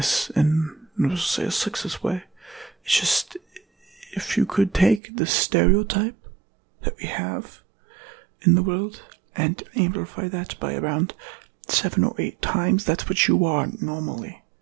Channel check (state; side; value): drops out; left; at 5.0 s